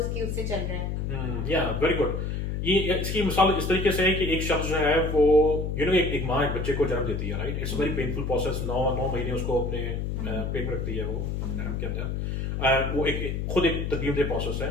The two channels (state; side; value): noise; left; hum, 2 dB below the sound